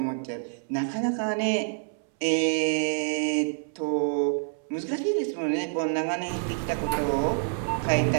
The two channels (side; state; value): left; silent; 60 dB below the other